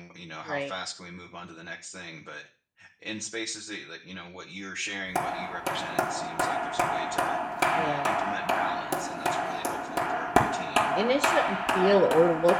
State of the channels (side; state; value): both; identical; correlation 1.00